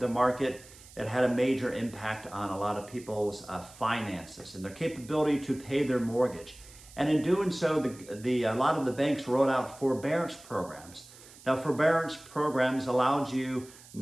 market, it had a major impact on a lot of people's finances and their capability to pay their mortgage. And in doing so, a lot of the banks rolled out forbearance programs. Now, forbearance programs allowed you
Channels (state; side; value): noise; right; hiss, 21 dB below the sound